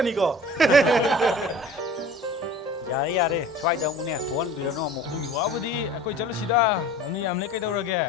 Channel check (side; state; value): both; normal; correlation 0.43